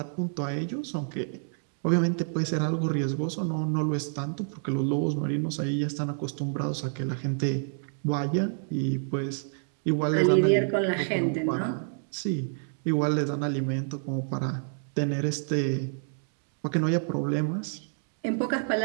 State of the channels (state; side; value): silent; left; digital silence